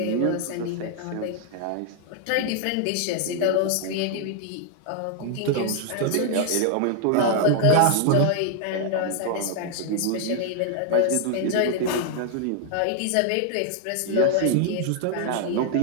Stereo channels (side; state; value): both; different; correlation 0.00